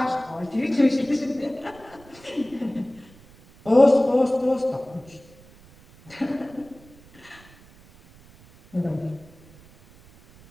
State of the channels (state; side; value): noise; right; rumble, 25 dB below the sound